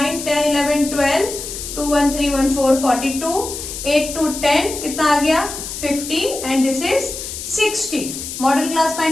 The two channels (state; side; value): noise; left; hiss, 8 dB below the sound